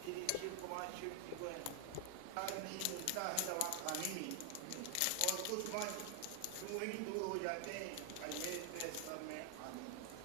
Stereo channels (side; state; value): both; different; correlation 0.00